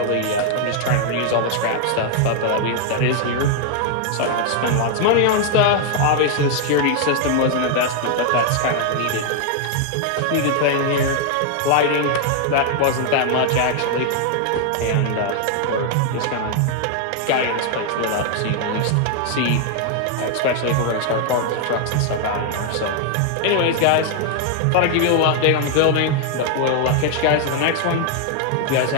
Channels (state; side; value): different; both; correlation 0.00